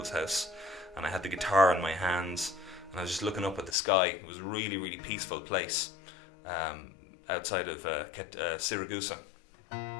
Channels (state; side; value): drops out; right; at 3.8 s